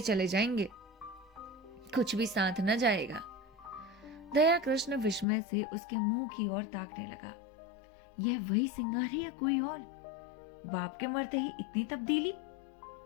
चले जाएंगे, कुछ भी साथ न जाएगा। दया कृष्ण विस्मय से उसके मुंह की ओर ताकने लगा। यह वही सिंगार है या कोई और? बाप के मरते ही इतनी तब्दीली।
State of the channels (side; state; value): right; drops out; at 5.2 s